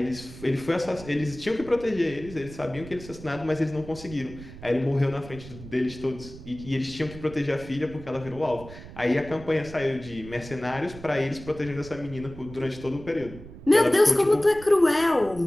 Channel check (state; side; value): noise; right; rumble, 15 dB below the sound